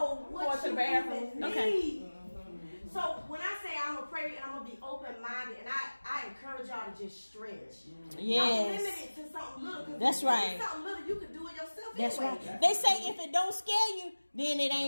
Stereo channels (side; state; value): both; inverted; correlation -1.00